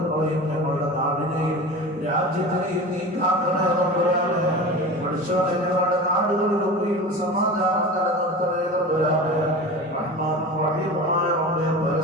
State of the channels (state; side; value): normal; both; correlation 0.32